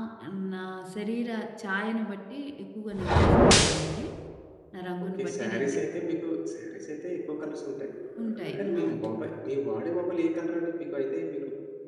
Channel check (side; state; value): both; identical; correlation 1.00